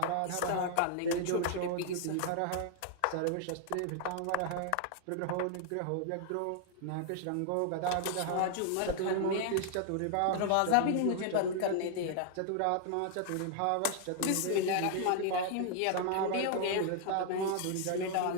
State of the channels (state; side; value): different; both; correlation 0.00